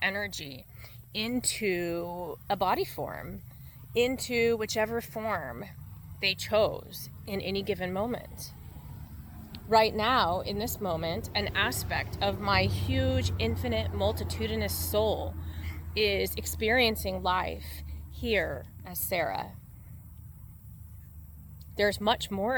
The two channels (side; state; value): both; identical; correlation 1.00